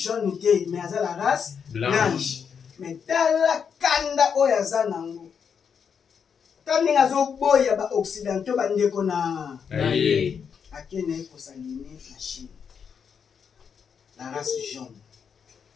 te mais aza la race blanche mais tala kanda oyo aza nango ta ndenge azoboya baoccidentaux bandeko na akende kosaline na Chine la race jaune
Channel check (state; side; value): quieter; right; 6.9 dB